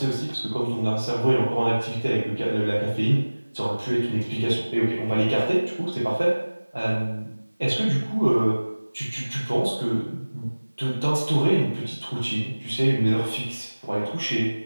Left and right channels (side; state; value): both; inverted; correlation -1.00